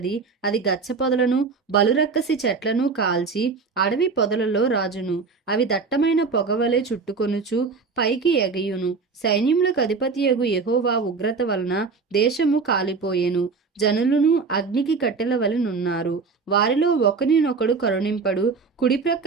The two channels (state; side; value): quieter; left; 4.7 dB